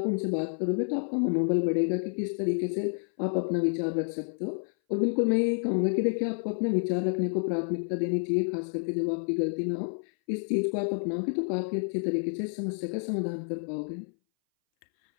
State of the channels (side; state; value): right; silent; 59 dB below the other